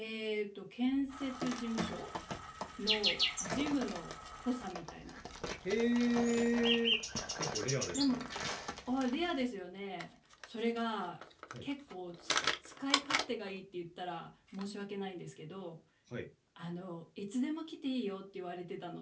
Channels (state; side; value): identical; both; correlation 1.00